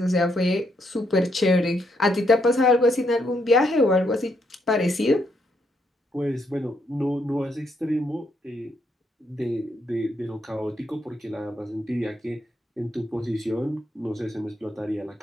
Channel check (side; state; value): both; normal; correlation 0.76